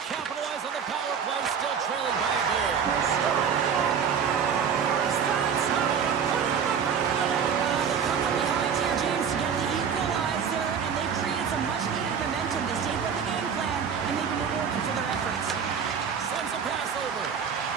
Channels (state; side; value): quieter; left; 7.0 dB